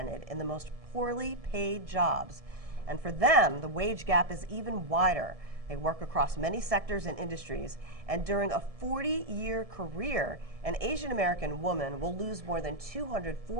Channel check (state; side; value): late; left; 1.7 ms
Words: in the most poorly paid jobs, and for them, the wage gap is even wider. They work across many sectors and industries, and during a 40-year career, an Asian American woman will lose more than